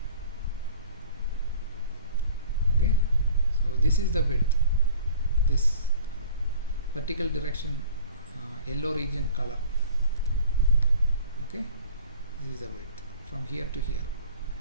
Okay. So this is the width. This vertical direction, yellow region color. Okay. This is the width from here to here.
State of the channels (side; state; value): both; inverted; correlation -0.47